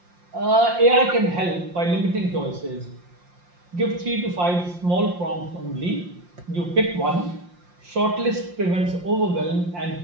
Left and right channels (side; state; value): left; late; 5.7 ms